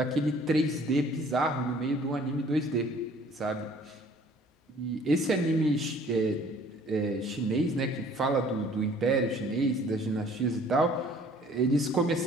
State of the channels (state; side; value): normal; both; correlation 0.54